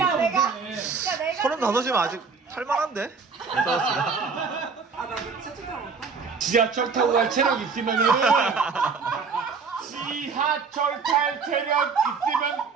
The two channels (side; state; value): left; quieter; 5.2 dB